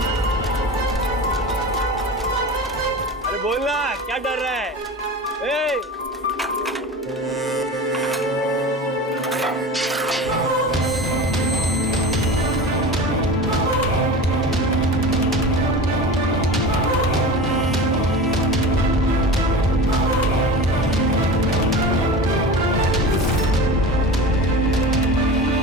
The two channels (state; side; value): normal; both; correlation 0.32